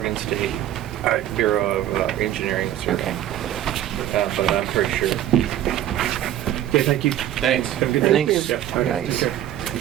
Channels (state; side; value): quieter; left; 12.1 dB